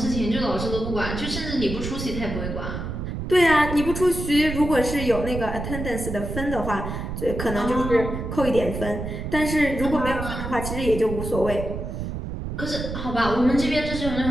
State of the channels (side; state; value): right; noise; rumble, 5 dB below the sound